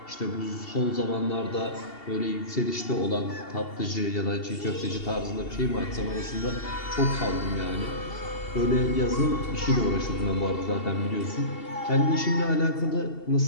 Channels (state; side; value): late; right; 2.7 ms